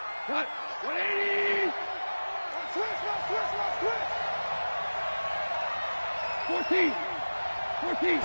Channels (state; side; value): inverted; both; correlation -1.00